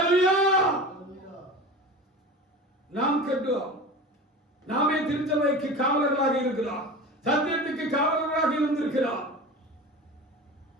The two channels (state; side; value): normal; both; correlation 0.33